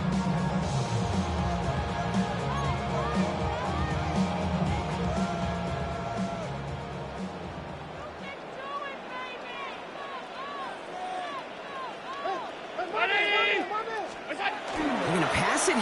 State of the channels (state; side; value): identical; both; correlation 1.00